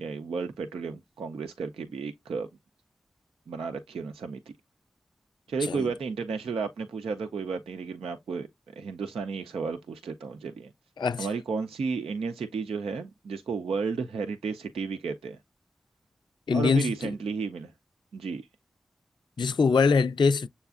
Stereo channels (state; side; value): normal; both; correlation 0.77